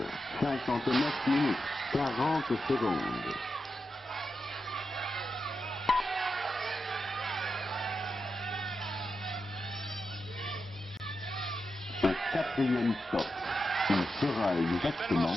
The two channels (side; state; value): both; normal; correlation 0.88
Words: 22h59 minutes. 40 secondes. Au quatrième stop, il sera Belle exactement